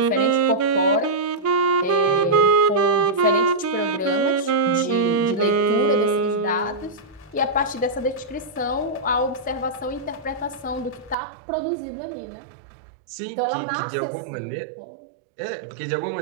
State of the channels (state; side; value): drops out; left; at 11.2 s